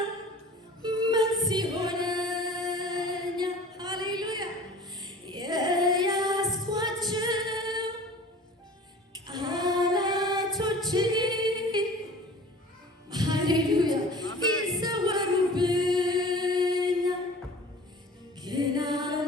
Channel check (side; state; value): both; normal; correlation 0.43